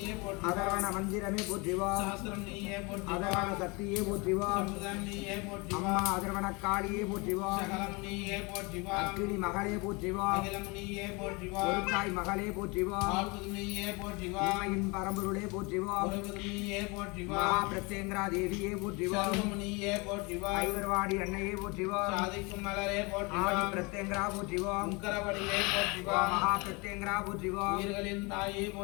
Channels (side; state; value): right; quieter; 27.8 dB